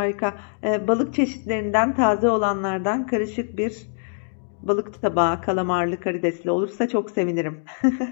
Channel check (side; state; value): right; silent; digital silence